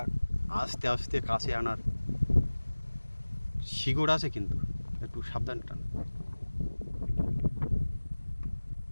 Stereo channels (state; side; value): inverted; both; correlation -1.00